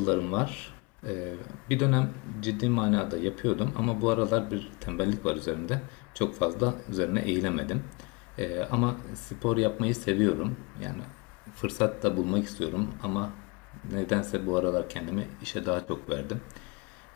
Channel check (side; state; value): right; quieter; 29.0 dB